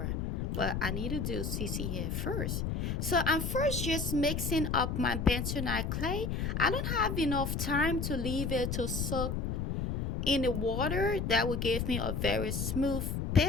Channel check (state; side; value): noise; left; rumble, 1 dB below the sound